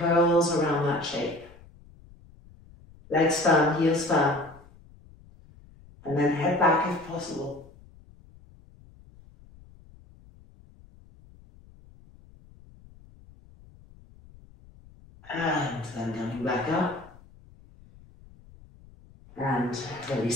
around that shape. Legs firm, heels firm, and then head back if possible. And then coming back up and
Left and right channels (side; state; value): left; noise; rumble, 24 dB below the sound